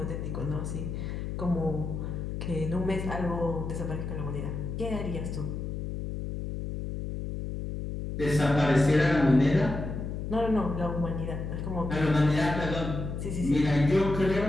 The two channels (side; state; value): left; noise; hum, 5 dB below the sound